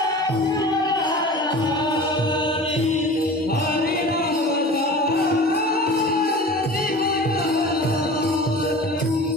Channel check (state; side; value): normal; both; correlation 0.38